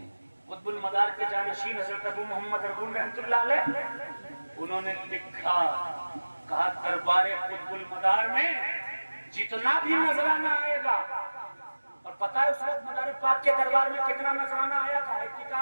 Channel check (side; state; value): both; inverted; correlation -1.00